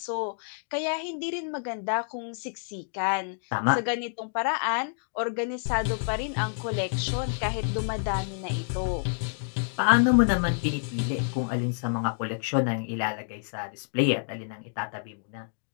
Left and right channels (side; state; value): right; silent; digital silence